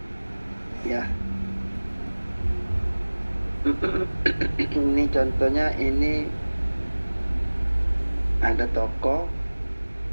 Ya. Ini contohnya, ini ada toko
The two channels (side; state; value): both; inverted; correlation -1.00